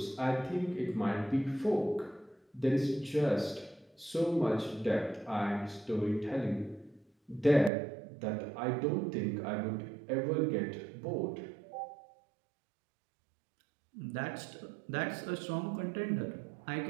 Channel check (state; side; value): drops out; left; at 7.7 s